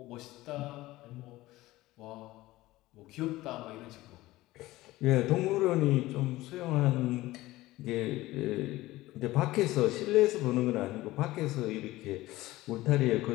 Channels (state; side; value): quieter; right; 17.8 dB